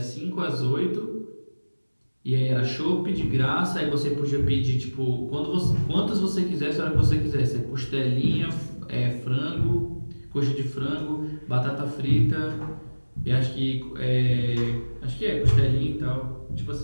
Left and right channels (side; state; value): both; inverted; correlation -1.00